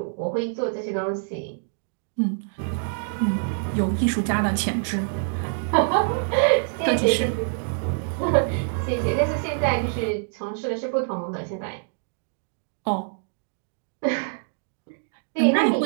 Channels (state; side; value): silent; left; digital silence